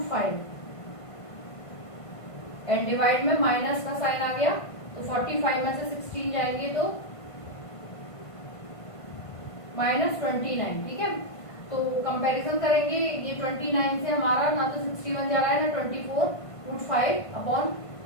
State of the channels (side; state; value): right; late; 1.5 ms